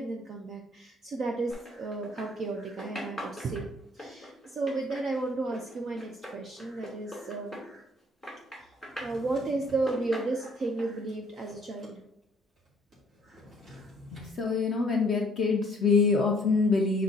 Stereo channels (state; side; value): normal; both; correlation 0.60